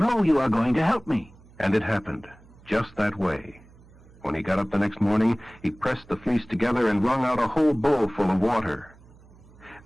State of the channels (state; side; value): noise; right; hum, 25 dB below the sound